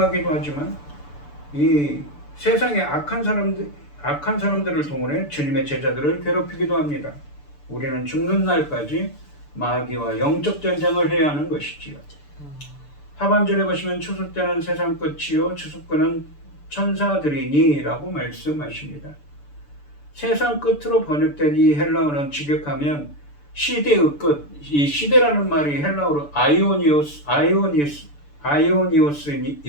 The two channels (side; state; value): right; late; 6.9 ms